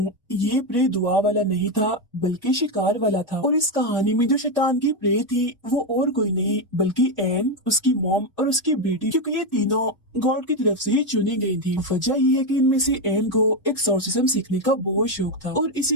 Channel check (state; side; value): normal; both; correlation 0.07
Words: ये प्रे दुआ वाला नहीं था बल्कि शिकार वाला था। और इस कहानी में जो शैतान की प्रे थी वो और कोई नहीं बल्कि एन, उसकी मॉम और उसकी बेटी, क्योंकि ये तीनों गॉड की तरफ से ही चुनी गई थी। वजह ये है कि इनमें से एन को एक्सोर्सिज्म सीखने का बहुत शौक था और